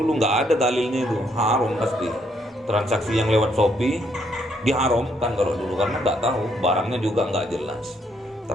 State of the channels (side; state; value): both; normal; correlation 0.72